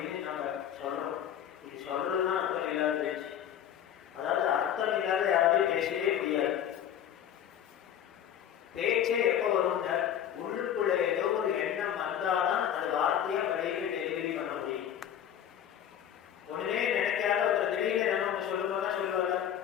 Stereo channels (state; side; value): quieter; right; 9.8 dB